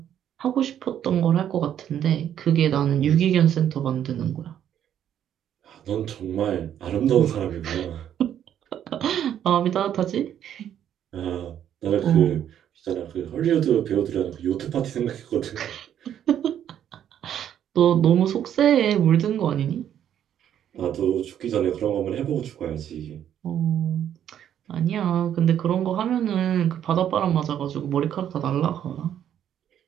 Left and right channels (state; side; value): quieter; left; 10.1 dB